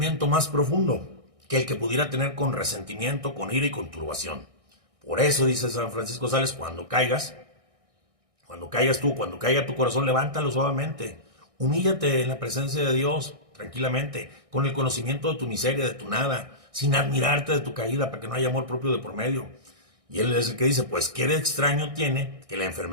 más profundo que el que pudiera tener con resentimiento, con ira y con turbación. Por eso, dice San Francisco de Sales, cuando caiga tu corazón, levántalo suavemente. Humíllate en la presencia de Dios, tranquilamente, con el conocimiento de tu miseria, de tu nada, sin admirarte de tu caída, para que no haya amor propio de por medio. Y él es el que dice, pues qué de extraño tiene que la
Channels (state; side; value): late; left; 1.6 ms